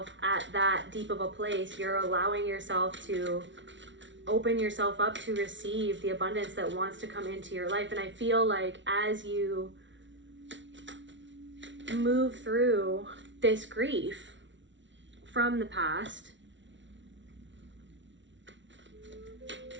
at that deep of a place, you're allowing yourself to open yourself up to receive the abundance that wants to come into your life. And I feel like as you move through this grief from the past,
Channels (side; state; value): left; late; 0.54 ms